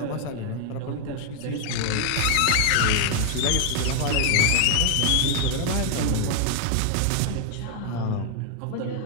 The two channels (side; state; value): both; different; correlation -0.01